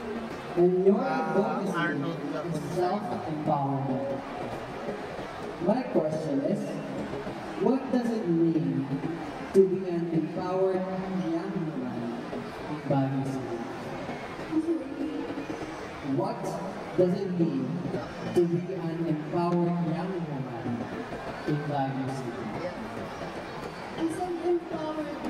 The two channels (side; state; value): both; identical; correlation 1.00